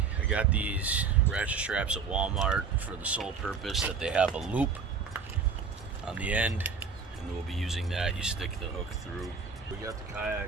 I got these ratchet straps at Walmart for the sole purpose that they have a loop on the end, and we'll be using that. You stick the hook through. We got the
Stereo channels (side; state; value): left; quieter; 5.5 dB